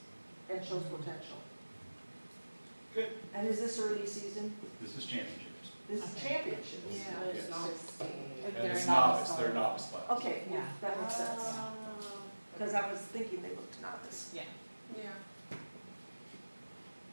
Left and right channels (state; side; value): inverted; both; correlation -1.00